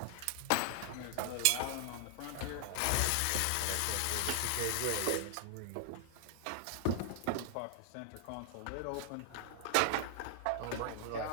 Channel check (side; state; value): both; different; correlation -0.01